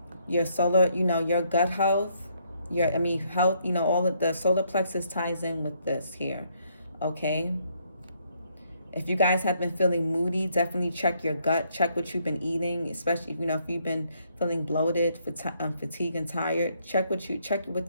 Your solar, you know, your gut health, health, you know, all of the solar plexus ties in with this here, okay? If you guys have been feeling moody, definitely check your gut, check what you've been eating, especially, you know, if you've been feeling bloated, fatigued and tired, check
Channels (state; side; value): inverted; both; correlation -0.71